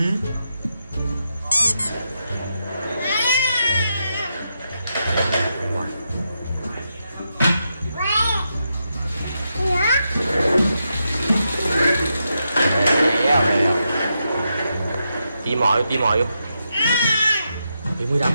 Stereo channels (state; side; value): inverted; both; correlation -0.84